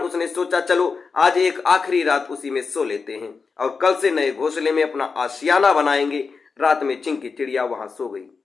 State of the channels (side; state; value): right; quieter; 4.9 dB